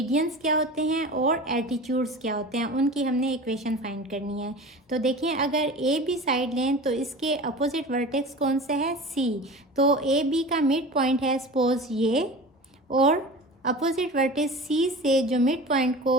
क्या होते हैं और एटीट्यूड्स क्या होते हैं, उनकी हमने इक्वेशन फाइंड करनी है। तो देखिए, अगर ए बी साइड लें तो इसके अपोजिट वर्टेक्स कौन सा है, सी। तो ए बी का मिड पॉइंट है सपोज ये, और अपोजिट वर्टेक्स सी से जो मिड पॉइंट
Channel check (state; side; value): normal; both; correlation 0.35